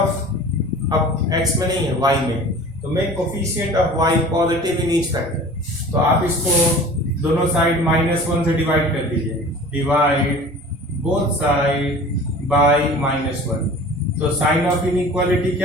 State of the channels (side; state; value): both; normal; correlation 0.42